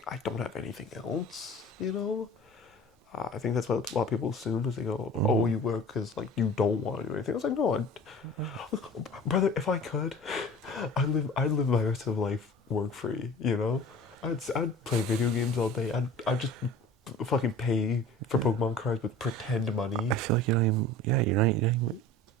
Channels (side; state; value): both; normal; correlation 0.42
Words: I don't have anything else. You know, I think that's what a lot of people assume is they go, oh, you work because like you don't want to do anything. I was like, no, brother, if I could, I'd live my rest of life work free. You know, I'd play video games all day. I'd just fucking pay for Pokemon cards with pretend money. I feel like you're not even.